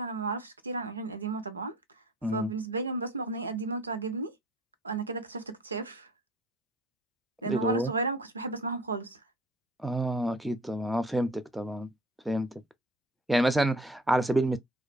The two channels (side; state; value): both; normal; correlation 0.48